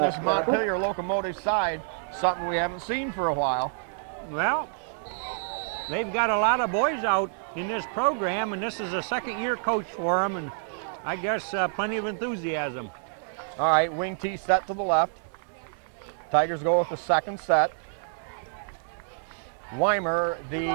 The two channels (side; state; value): left; silent; digital silence